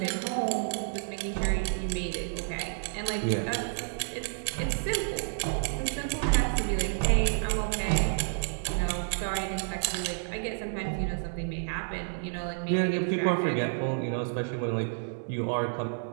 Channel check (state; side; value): silent; left; digital silence